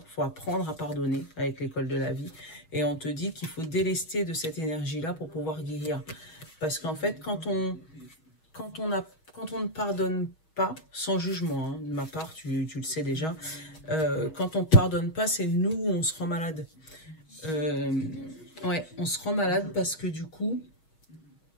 Il faut apprendre à pardonner avec l'école de la vie. Et on te dit qu'il faut délester de cette énergie-là pour pouvoir guérir. Parce qu'en fait, quand on ne pardonne pas, sans jugement, hein, de ma part, tu le sais déjà, quand on ne pardonne pas, c'est nous où on se rend malade. Ouais, on se rend malade parce que du coup,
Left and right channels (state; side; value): late; right; 6.3 ms